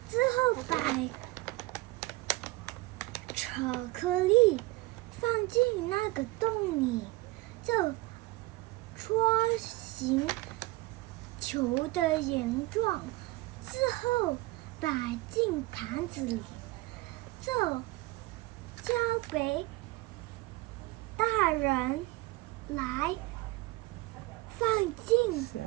之后把巧克力放进那个洞里，就搓形球的形状，之后摆进盘子里，就交给大人来放进消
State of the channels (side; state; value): left; quieter; 21.0 dB